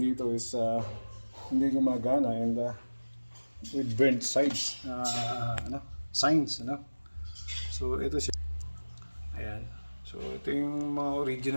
is hindi gumagana and with burnt sides, signs, So ito siya. Ayan. So ito yung mga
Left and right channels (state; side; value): inverted; both; correlation -1.00